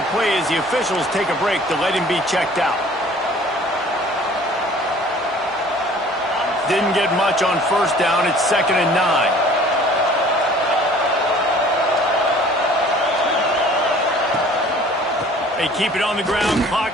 play as the officials take a break to let him be checked out. Didn't get much on first down. It's 2nd and 9. They keep it on the ground.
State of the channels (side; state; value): both; normal; correlation 0.51